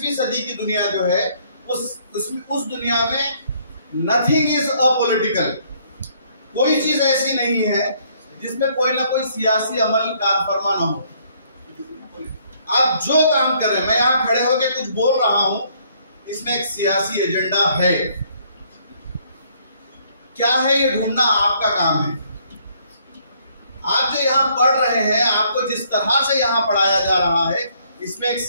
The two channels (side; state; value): both; inverted; correlation -0.66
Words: सदी की दुनिया जो है, उस दुनिया में नथिंग इज अपॉलिटिकल। कोई चीज ऐसी नहीं है जिसमें कोई ना कोई सियासी अमल कार फरमा ना हो। आप जो काम कर रहे हैं, मैं यहां खड़े होकर कुछ बोल रहा हूं, इसमें एक सियासी एजेंडा है। क्या है ये ढूंढना आपका काम है। आप जो यहाँ पढ़ रहे हैं, आपको जिस तरह से यहाँ पढ़ाया जा रहा है, इसमें एक